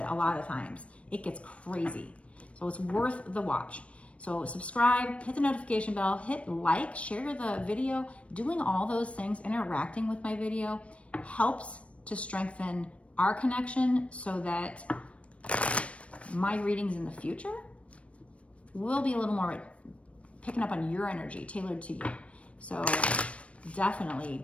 a lot of times. It gets crazy. So it's worth the watch. So subscribe, hit the notification bell, hit like, share the video. Doing all those things, interacting with my video, helps to strengthen our connection so that my readings in the future will be a little more picking up on your energy, tailored to you. So definitely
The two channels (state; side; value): late; right; 0.062 ms